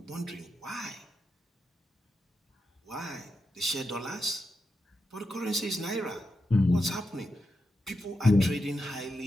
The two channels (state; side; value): normal; both; correlation 0.87